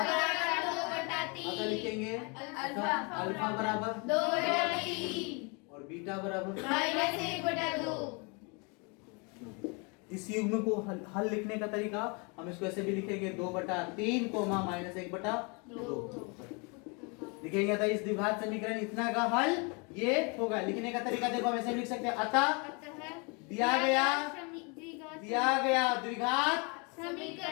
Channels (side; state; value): right; quieter; 32.3 dB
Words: बराबर 2/3 अगर लिखेंगे अल्फा बराबर 2/3 और बीटा बराबर -1/2। इस युग्म को हल लिखने का तरीका हम इसको ऐसे भी लिखेंगे 2/3 -1/2 लिखेंगे। तो इस द्विघात समीकरण इतना का हल ये होगा। लिखने का तरीका देखो हम ऐसे लिख सकते हैं, अतः दिया गया